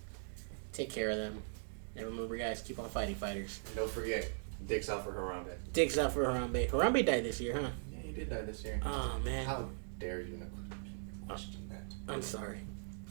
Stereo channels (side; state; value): left; silent; digital silence